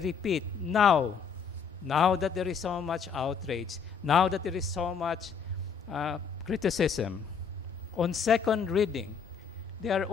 now that there is so much outrage, now that there is so much criticism, on second reading, they are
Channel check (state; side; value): quieter; right; 6.3 dB